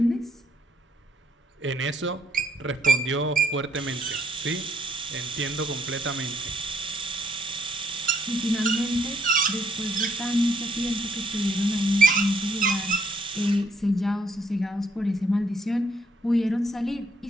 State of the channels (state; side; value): normal; both; correlation 0.71